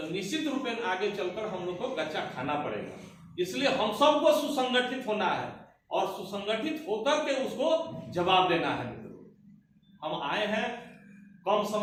निश्चित रूप में आगे चलकर हम लोग को गच्चा खाना पड़ेगा। इसलिए हम सबको सुसंगठित होना है और सुसंगठित होकर के उसको जवाब देना है। मित्रों, हम आए हैं कम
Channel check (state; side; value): identical; both; correlation 1.00